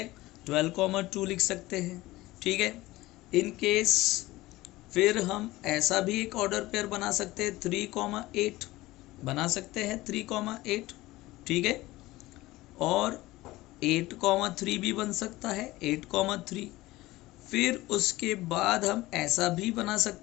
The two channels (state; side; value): quieter; right; 18.6 dB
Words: 12, 2 लिख सकते हैं, ठीक है। इन केस फिर हम ऐसा भी एक ऑर्डर पेयर बना सकते हैं 3, 8 बना सकते हैं 3, 8, ठीक है। और 8, 3 भी बन सकता है 8, 3। फिर उसके बाद हम ऐसा भी बना